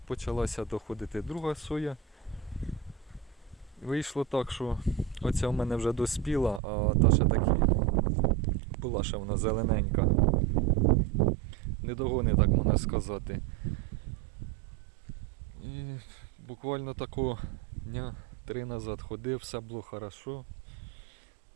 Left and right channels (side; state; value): left; drops out; at 6.6 s